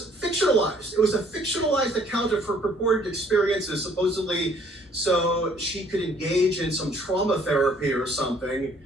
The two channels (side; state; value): both; normal; correlation 0.61